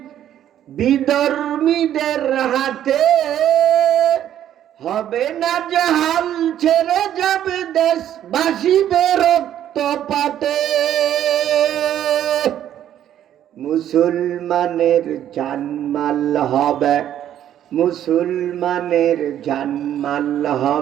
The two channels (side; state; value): left; quieter; 11.0 dB